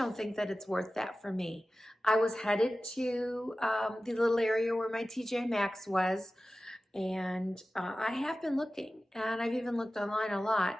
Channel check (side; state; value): both; normal; correlation 0.96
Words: think that it's worth that for me. I was headed to the little area where my TJMaxx was, and I have been looking, and I've even looked online a